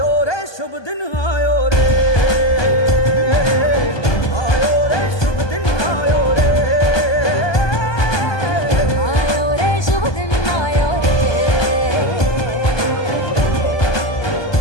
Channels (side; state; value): right; late; 1.2 ms